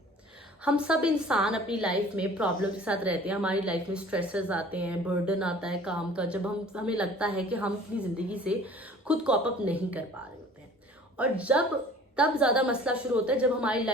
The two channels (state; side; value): normal; both; correlation 0.48